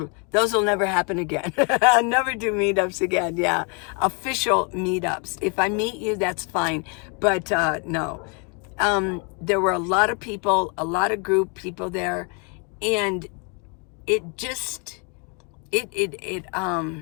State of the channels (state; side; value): quieter; right; 35.1 dB